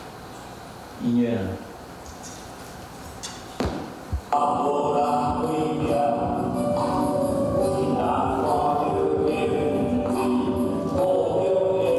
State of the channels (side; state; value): both; identical; correlation 1.00